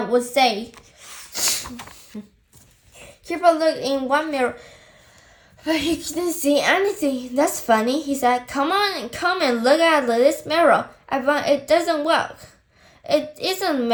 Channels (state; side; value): identical; both; correlation 1.00